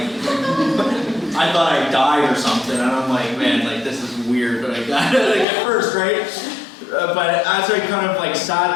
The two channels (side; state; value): right; drops out; at 5.5 s